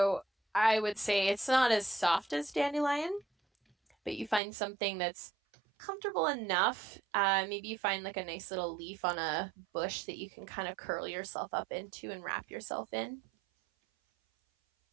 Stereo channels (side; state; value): left; drops out; at 4.4 s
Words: I would say it's not as soft as dandelion, but you find something that's comfortable enough. Maybe you find like a nice little leaf on a bush that you can kind of curl yourself up into and wrap yourself in.